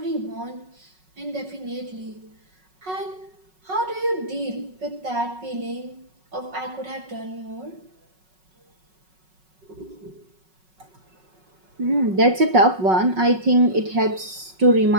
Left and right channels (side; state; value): left; late; 5.4 ms